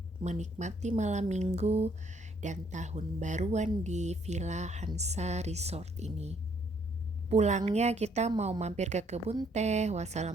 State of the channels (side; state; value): both; normal; correlation 0.67